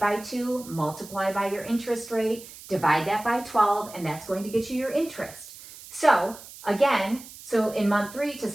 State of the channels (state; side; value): noise; right; hiss, 17 dB below the sound